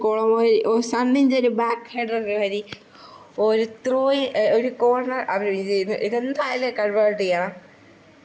സണ്ണിൻ്റെ ഒരു ബാക്ക് ഹെഡർ വരി ഒരു ഒരു കോർണർ അവർ ചെയ്യുന്നു. ഇതെന്തായാലും കൺവേർട്ട് ചെയ്യണം.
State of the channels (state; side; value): identical; both; correlation 1.00